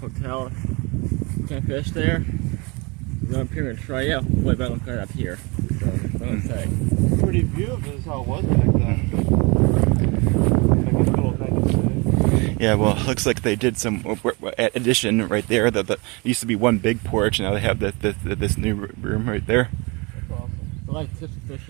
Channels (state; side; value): quieter; left; 28.2 dB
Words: Can't fish there. Go up here and try out. Way better than up here. So, what would say? Pretty view of it is how it was back then. Yeah, well, it looks like they did some addition right there. That used to be one big porch, and now they have this new room right there. That's awesome. I like tips